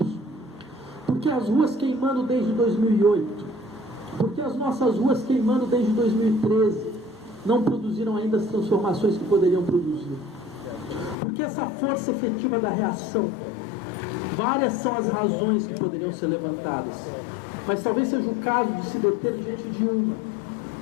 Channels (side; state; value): right; drops out; at 11.2 s